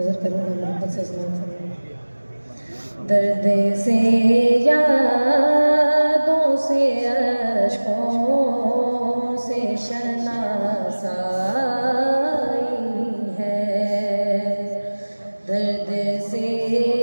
کروں گا، محبت سے سماعت فرمائیں۔ درد سے یادوں سے اشکوں سے شناسائی ہے، درد سے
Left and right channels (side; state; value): both; inverted; correlation -1.00